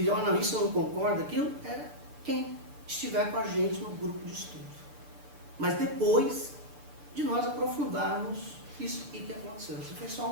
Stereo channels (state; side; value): late; left; 6.9 ms